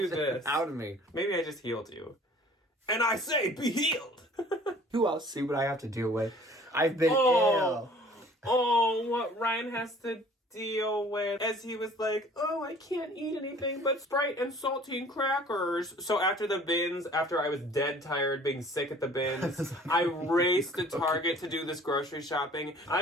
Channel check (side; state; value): both; normal; correlation 0.51